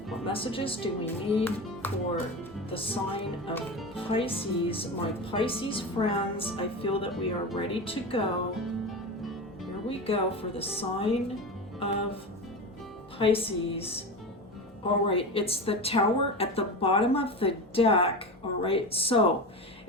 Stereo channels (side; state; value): both; normal; correlation 0.24